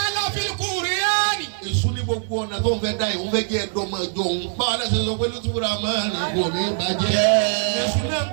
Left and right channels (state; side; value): silent; left; 64 dB below the other